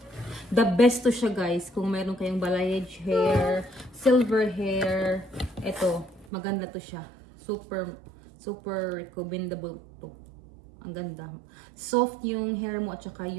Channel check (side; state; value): left; drops out; at 6.2 s